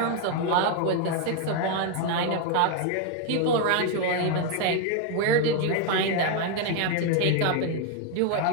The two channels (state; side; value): different; both; correlation 0.01